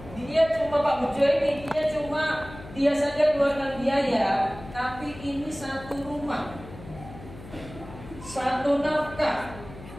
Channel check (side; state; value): left; noise; hum, 16 dB below the sound